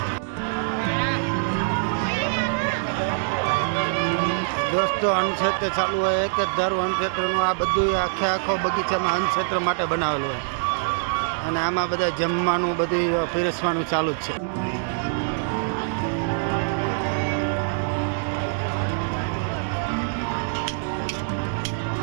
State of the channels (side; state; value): left; silent; digital silence